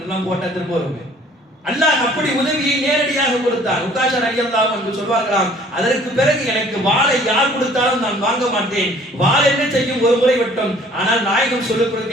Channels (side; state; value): both; normal; correlation 0.55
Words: போட்டா திரும்ப வருங்க. அல்லாஹ் அப்படி உதவியை நேரடியாக கொடுத்தான். உக்காஷா ரலியல்லாஹு அன்ஹு சொல்வார்களாம், அதற்கு பிறகு எனக்கு வாளை யார் கொடுத்தாலும் நான் வாங்க மாட்டேன். வாள் என்ன செய்யும்? ஒரு முறை மட்டும். ஆனால் நாயகம் சொல்லிக்